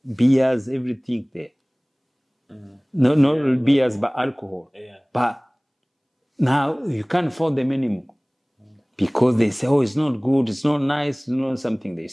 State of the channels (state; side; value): identical; both; correlation 1.00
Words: beers, everything there. No beers, but alcohol. Yeah. But now you can't afford them anymore because they say, oh, it's not good, it's not nice, something they